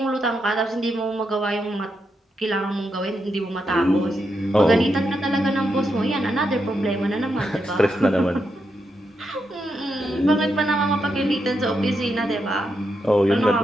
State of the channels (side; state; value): both; normal; correlation 0.83